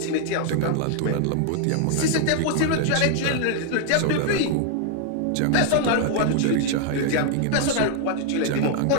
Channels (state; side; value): different; both; correlation 0.00